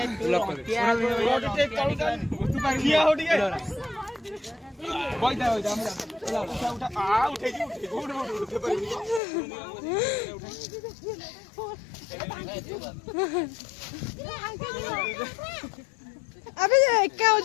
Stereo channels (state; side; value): drops out; right; at 9.2 s